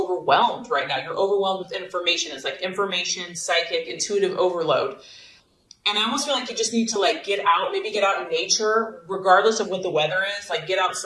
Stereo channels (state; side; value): identical; both; correlation 1.00